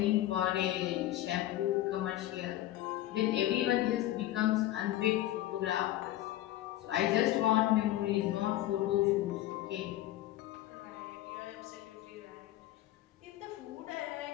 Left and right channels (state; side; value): quieter; right; 14.5 dB